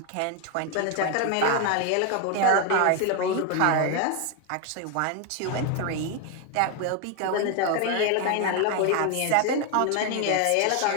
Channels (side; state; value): both; different; correlation 0.01